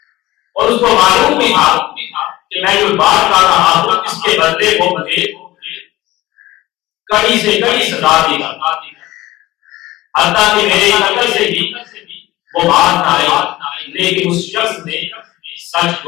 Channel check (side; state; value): right; quieter; 17.7 dB